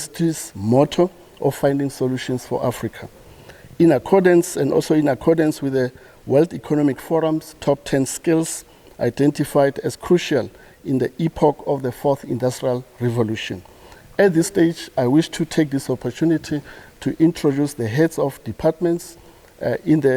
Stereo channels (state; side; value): identical; both; correlation 1.00